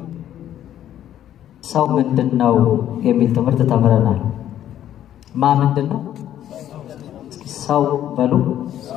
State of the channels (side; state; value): right; quieter; 11.4 dB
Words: ሰው ምንድነው የሚል ትምህርት ተምረናል። ምንድነው ሰው በሉ?